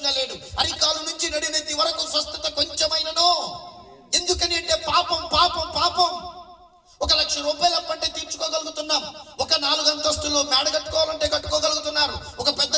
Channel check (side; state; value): both; identical; correlation 1.00